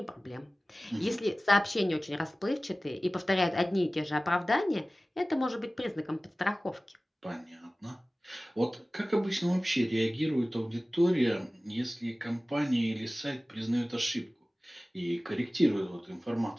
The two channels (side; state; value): both; normal; correlation 0.97